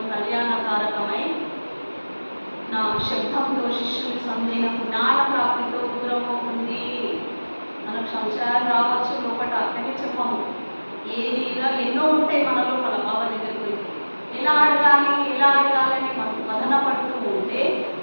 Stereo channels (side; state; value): both; inverted; correlation -1.00